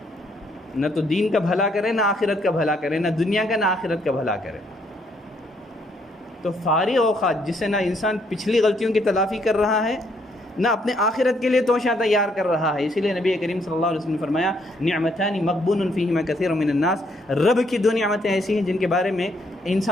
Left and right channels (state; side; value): normal; both; correlation 0.70